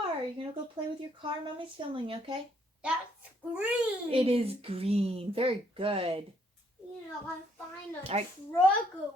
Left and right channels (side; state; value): both; normal; correlation 0.69